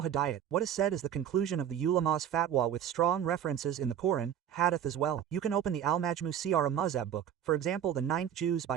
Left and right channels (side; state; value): left; quieter; 9.6 dB